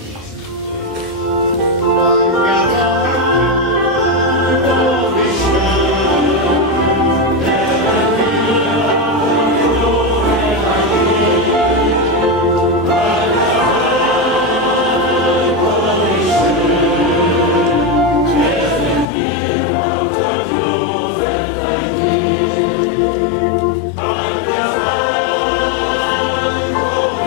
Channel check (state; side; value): drops out; right; at 19.1 s